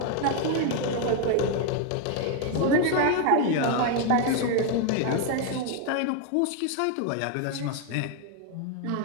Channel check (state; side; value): different; both; correlation 0.01